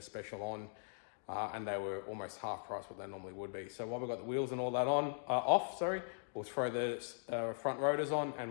special on and they were almost half price what they normally would be. So while we've got the wheels and all that off, we'll throw the front rotors on and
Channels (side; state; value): right; silent; digital silence